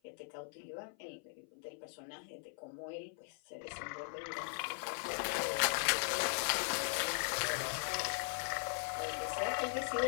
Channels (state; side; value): silent; right; 51 dB below the other